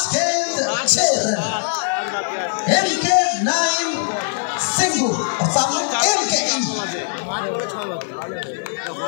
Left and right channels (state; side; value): silent; right; digital silence